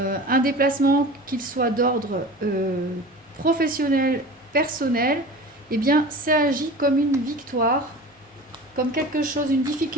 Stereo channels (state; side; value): normal; both; correlation 0.36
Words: déplacement qu'il soit d'ordre professionnel, personnel, eh bien, ça agit comme une victoire, comme quelque chose, une